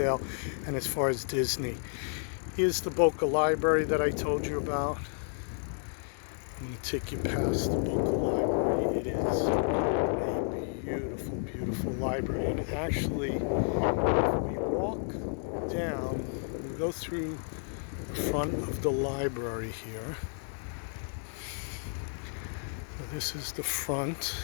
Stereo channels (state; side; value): silent; right; 57 dB below the other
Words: and as far as Disney. Here's the Boca Library that I told you about. I'm going to take you past the Boca Library. It is a beautiful, beautiful library. And actually, if we walk down, we go through the front of the library here. So this is the front